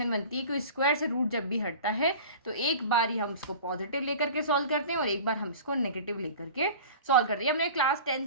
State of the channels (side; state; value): both; inverted; correlation -0.39